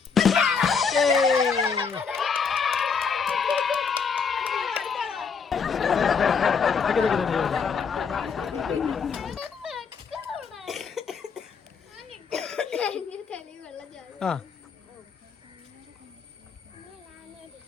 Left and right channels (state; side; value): quieter; right; 5.8 dB